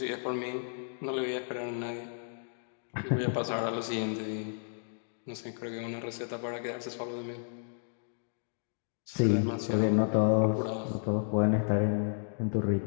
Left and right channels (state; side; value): silent; right; digital silence